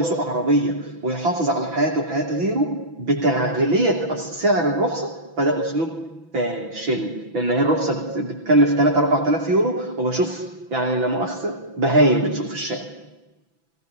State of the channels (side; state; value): left; late; 6.0 ms